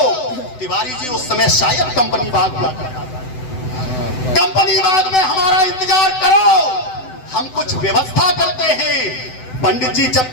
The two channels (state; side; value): late; right; 7.9 ms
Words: तिवारी जी उस समय शायद कंपनी बाग हुआ करता था। कंपनी बाग में हमारा इंतजार करो, हम कुछ व्यवस्था करते हैं। पंडित जी जब